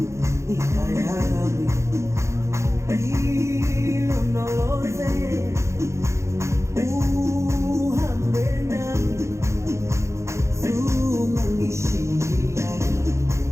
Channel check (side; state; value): left; late; 0.14 ms